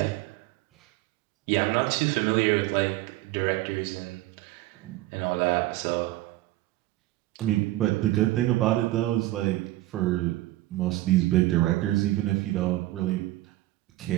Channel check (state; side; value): quieter; left; 17.2 dB